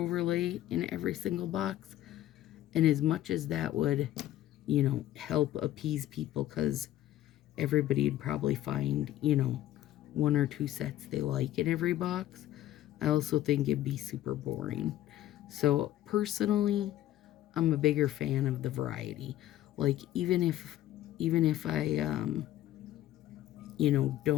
in every single box. And as much as that would, you know, help appease people, because everybody'd probably find, you know, 1 or 2 sets they like in every box, I also think it'd be super boring. So personally, I'm a bigger fan of the variety. Like, even if I you know,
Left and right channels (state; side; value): quieter; right; 13.6 dB